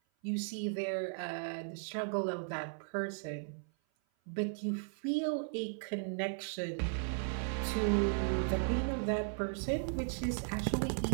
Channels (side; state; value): left; silent; 53 dB below the other